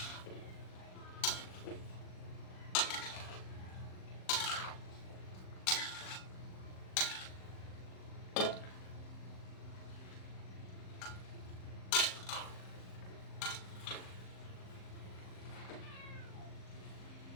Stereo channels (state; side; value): late; right; 38 ms